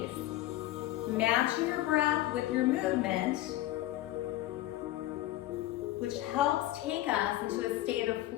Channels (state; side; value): quieter; right; 15.4 dB